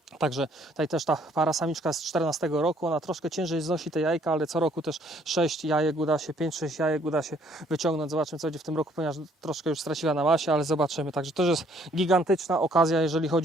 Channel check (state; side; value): normal; both; correlation 0.63